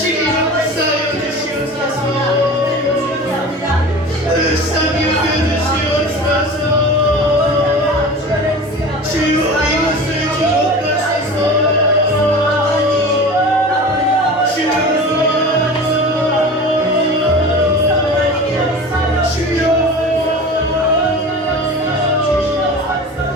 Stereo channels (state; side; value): normal; both; correlation 0.35